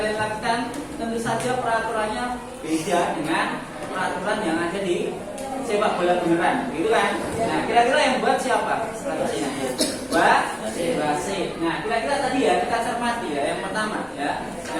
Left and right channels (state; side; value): identical; both; correlation 1.00